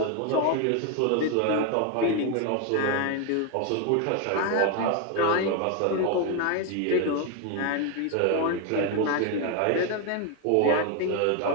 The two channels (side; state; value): both; different; correlation 0.01